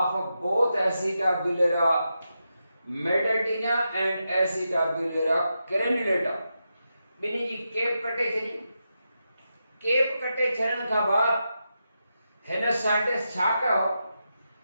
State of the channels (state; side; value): inverted; both; correlation -0.87